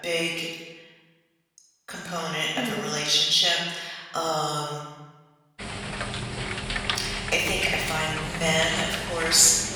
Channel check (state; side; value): identical; both; correlation 1.00